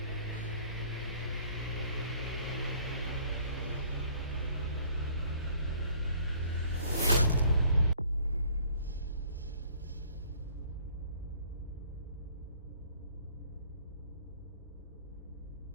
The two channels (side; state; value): both; inverted; correlation -0.57